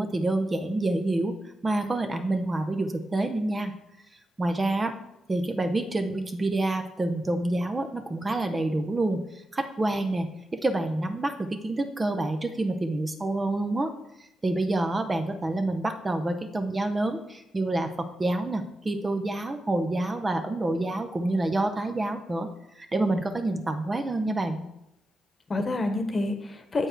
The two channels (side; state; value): both; normal; correlation 0.91